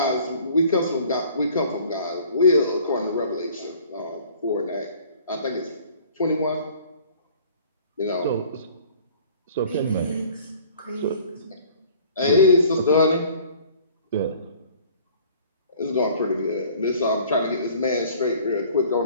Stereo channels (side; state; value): both; inverted; correlation -0.52